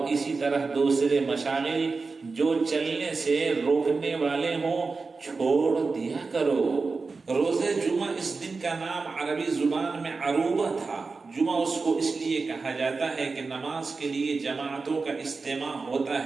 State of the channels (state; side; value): quieter; left; 4.2 dB